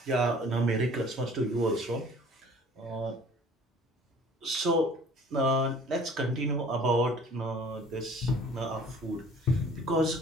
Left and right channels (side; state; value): both; normal; correlation 0.50